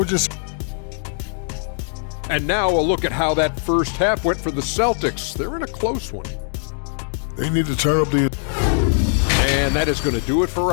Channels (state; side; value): silent; right; digital silence